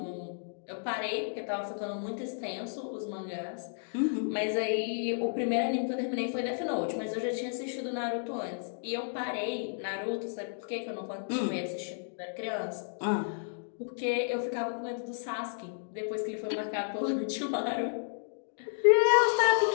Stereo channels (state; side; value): silent; right; digital silence